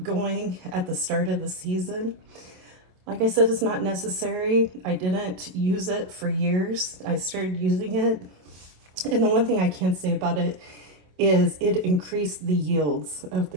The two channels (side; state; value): left; late; 27 ms